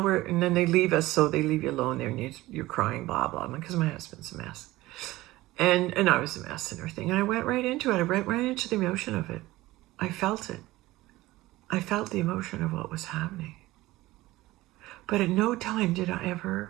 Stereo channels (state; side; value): quieter; left; 18.2 dB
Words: then they leave us, so they leave you alone there, and you're crying, blah, blah, because my husband's a mess. And I was a mess and everything. And I went right into it. I went right into the emotion of it. I felt it. I felt the emotion of what was happening. But at no time did I